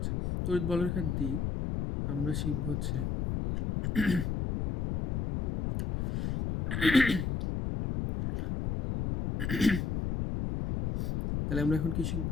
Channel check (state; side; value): noise; left; rumble, 1 dB below the sound